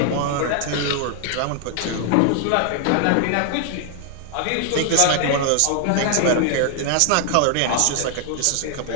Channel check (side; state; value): both; different; correlation 0.00